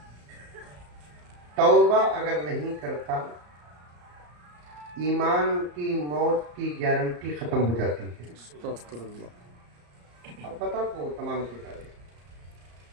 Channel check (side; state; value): left; late; 34 ms